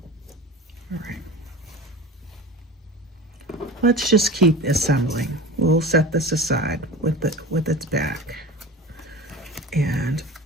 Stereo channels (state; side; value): normal; both; correlation 0.34